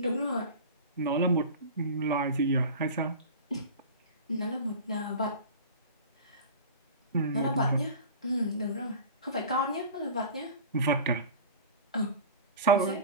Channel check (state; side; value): inverted; both; correlation -0.35